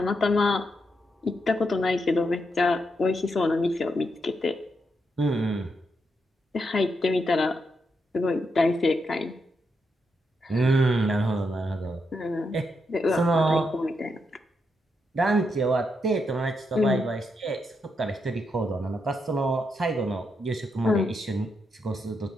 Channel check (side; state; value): both; normal; correlation 0.82